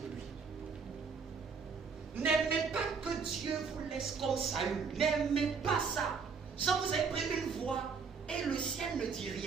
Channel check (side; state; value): left; quieter; 5.5 dB